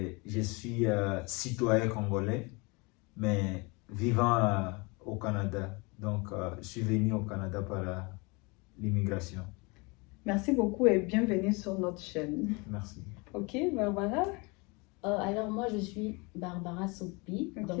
je suis citoyen congolais, mais vivant au Canada. Donc, je suis venu au Canada par l'immigration. Merci beaucoup et bienvenue sur notre chaîne. Merci. Ok, Barbara? Alors moi, je suis Barbara Sopi, Ok.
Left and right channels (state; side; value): quieter; right; 28.1 dB